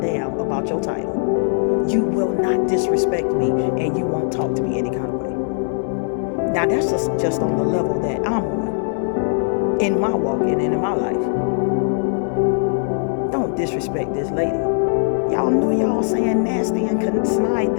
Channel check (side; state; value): right; silent; digital silence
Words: about your title. You will not disrespect me, and you won't talk to me any kind of way. Now, that's just on the level that I'm on, in my walk and in my life. Don't disrespect this lady. Y'all know y'all saying nasty and snide